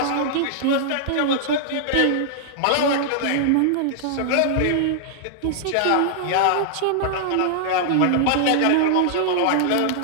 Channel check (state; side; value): different; both; correlation -0.01